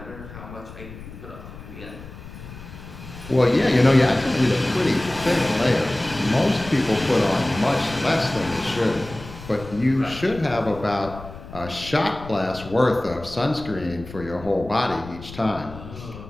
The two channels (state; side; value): noise; left; rumble, 15 dB below the sound